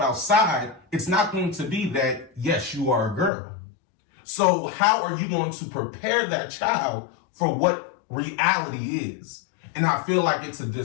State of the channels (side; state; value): right; drops out; at 3.3 s